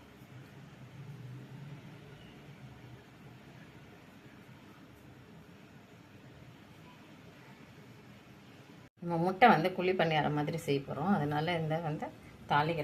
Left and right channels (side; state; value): both; identical; correlation 1.00